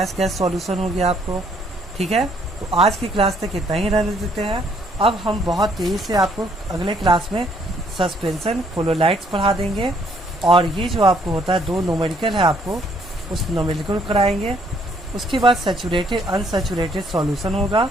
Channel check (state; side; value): normal; both; correlation 0.67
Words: गैस सॉल्यूशन हो गया आपको, ठीक है। तो आज की क्लास तक इतना ही रहने देते हैं। अब हम बहुत तेज़ी से आपको अगले क्लास में सस्पेंशन कोलोलाइट्स पढ़ा देंगे, और ये जो आपको होता है दो न्यूमेरिकल है आपको उस न्यूमेरिकल कराएंगे। उसके बाद सैचुरेटेड अनसैचुरेटेड सॉल्यूशन होगा,